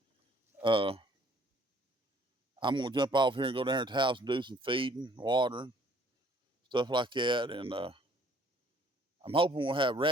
I'm gonna jump off here and go down to the house and do some feeding, watering, stuff like that. And I'm hoping we'll have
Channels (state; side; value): normal; both; correlation 0.59